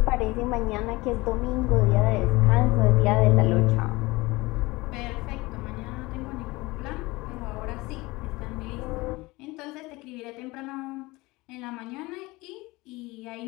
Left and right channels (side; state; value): right; quieter; 21.9 dB